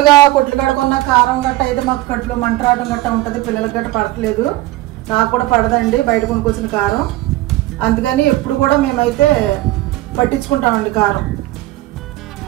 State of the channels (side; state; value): left; quieter; 17.5 dB